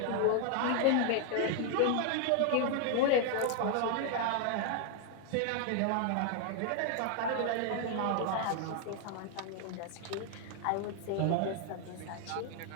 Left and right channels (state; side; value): different; both; correlation 0.00